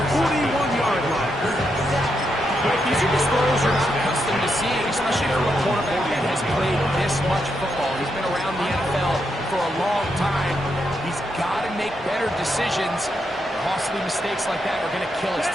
41-yard line. But these are just throws you're not accustomed to seeing, especially from a quarterback that has played this much football. He's been around the NFL for a long time. He's got to make better decisions. Costly mistakes like that are going to kill his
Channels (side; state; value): both; normal; correlation 0.82